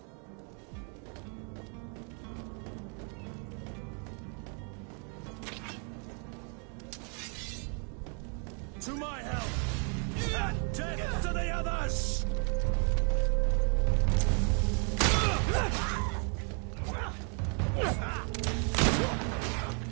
To my help! And death to the others!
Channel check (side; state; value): left; quieter; 39.3 dB